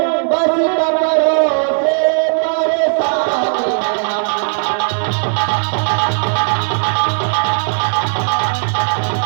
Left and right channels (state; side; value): silent; left; digital silence